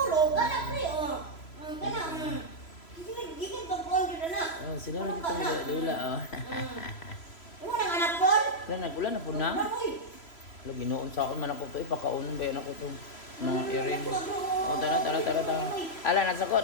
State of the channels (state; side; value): late; right; 3.1 ms